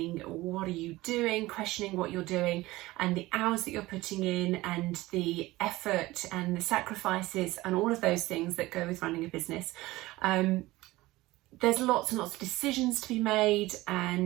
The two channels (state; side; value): quieter; left; 18.9 dB